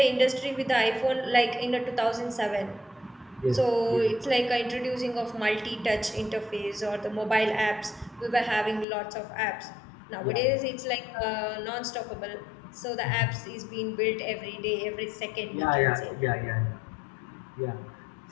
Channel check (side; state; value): right; drops out; at 8.8 s